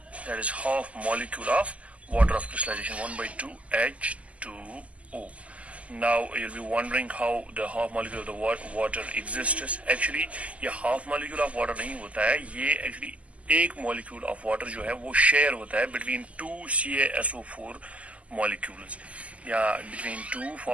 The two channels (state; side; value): late; left; 0.066 ms